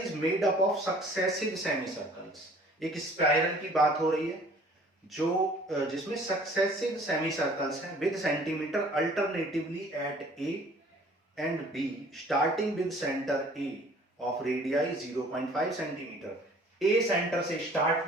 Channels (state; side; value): normal; both; correlation 0.53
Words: made up of successive semi circles. एक स्पाइरल की बात हो रही है जो जिसमें सक्सेसिव सेमी सर्कल्स हैं with centimetre alternatively at A and B starting with centre A of radii 0.5 centimetre. A centre से स्टार्ट